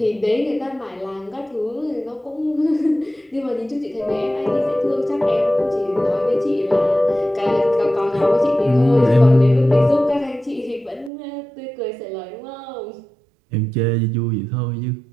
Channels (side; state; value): left; drops out; at 11.1 s